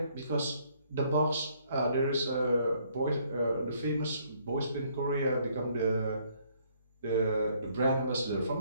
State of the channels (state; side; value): inverted; both; correlation -0.66